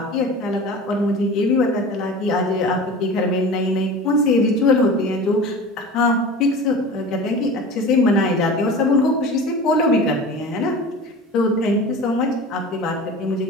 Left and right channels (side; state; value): both; normal; correlation 0.35